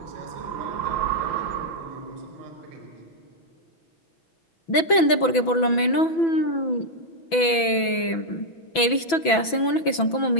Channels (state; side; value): late; right; 6.0 ms